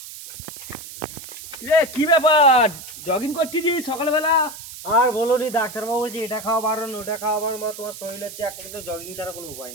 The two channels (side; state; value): right; noise; hiss, 13 dB below the sound